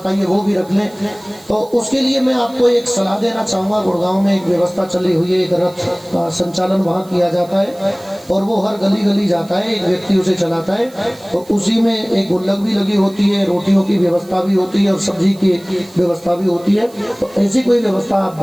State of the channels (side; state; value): right; noise; hiss, 25 dB below the sound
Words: वो भी रख लें। तो उसके लिए मैं आपको एक सलाह देना चाहूँगा। गुड़गांव में एक व्यवस्था चली हुई है, एक रथ का संचालन वहाँ किया जाता है। और वो हर गली गली जाता है, एक व्यक्ति उसे चलाता है, तो उसी में एक गुल्लक भी लगी होती है, रोटियों की व्यवस्था भी होती है और सब्जी की व्यवस्था भी होती है। तो ऐसी कोई व्यवस्था आप